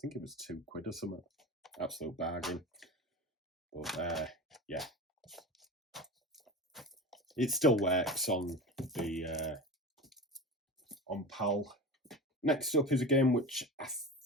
it was £2 or something. Absolute bargain. But yeah, it still works on the on PAL. Next up is a game which I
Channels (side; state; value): both; normal; correlation 0.29